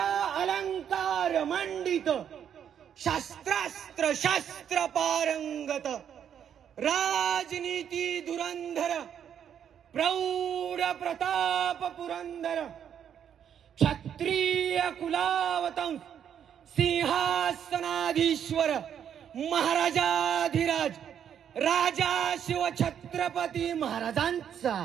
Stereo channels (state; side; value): quieter; left; 8.8 dB